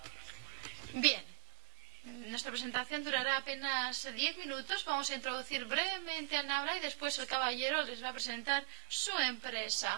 Bien, nuestra presentación durará apenas 10 minutos. Vamos a introducir brevemente a Nabla y después el caballero les va a presentar su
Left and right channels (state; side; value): silent; left; digital silence